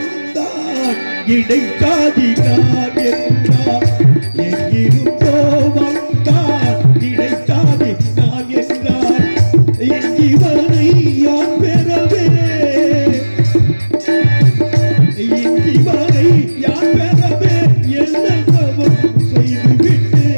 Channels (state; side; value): inverted; both; correlation -1.00